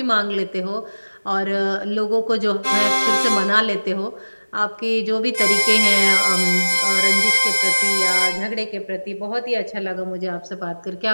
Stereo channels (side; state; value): both; inverted; correlation -1.00